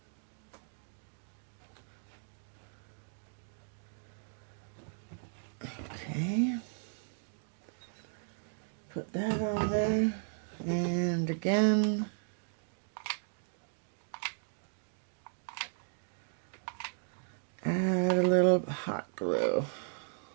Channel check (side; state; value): left; silent; digital silence